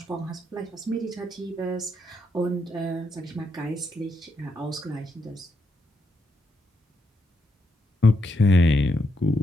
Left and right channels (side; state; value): both; normal; correlation 0.79